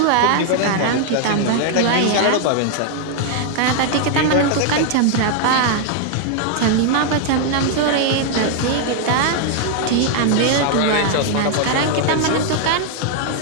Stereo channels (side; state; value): both; different; correlation 0.00